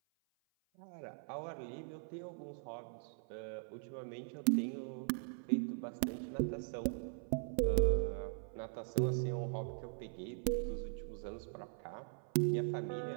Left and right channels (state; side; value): silent; left; 51 dB below the other